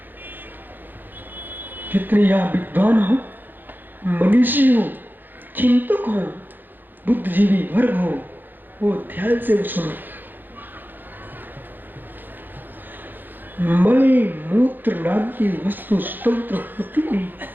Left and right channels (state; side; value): late; left; 0.090 ms